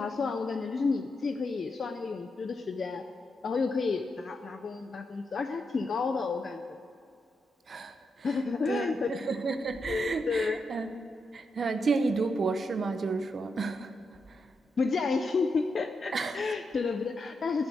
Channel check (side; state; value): both; normal; correlation 0.84